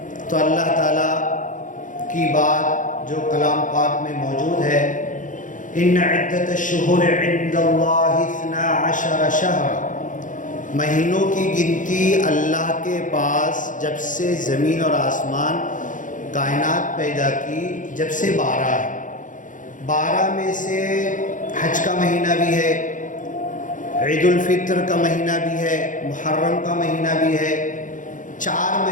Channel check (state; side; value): late; right; 0.38 ms